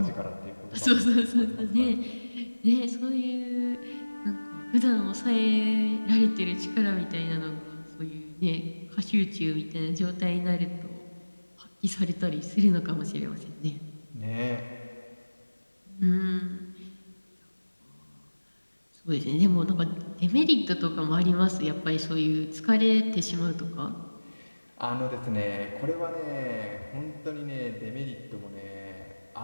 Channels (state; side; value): inverted; both; correlation -1.00